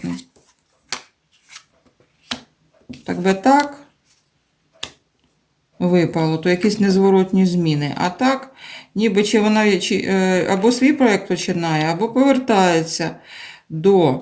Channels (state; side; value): identical; both; correlation 1.00